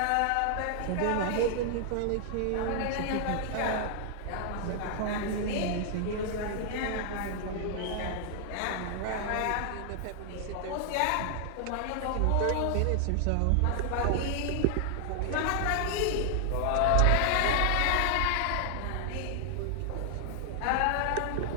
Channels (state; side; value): different; both; correlation 0.00